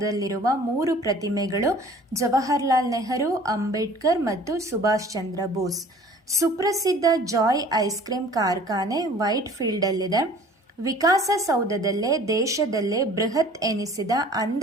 3 ಪ್ರತಿಮೆಗಳು ಜವಾಹರ್ಲಾಲ್ ನೆಹರು, ಅಂಬೇಡ್ಕರ್ ಮತ್ತು ಸುಭಾಷ್ ಚಂದ್ರ ಬೋಸ್. ಸುಪ್ರಸಿದ್ಧ ಜಾಯ್ ಐಸ್ ಕ್ರೀಮ್ ಕಾರ್ಖಾನೆ ವೈಟ್ ಫೀಲ್ಡಲ್ಲಿದೆ. ವಿಕಾಸಸೌಧದಲ್ಲೇ ದೇಶದಲ್ಲೇ ಬೃಹತ್ ಎನಿಸಿದ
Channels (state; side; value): normal; both; correlation 0.49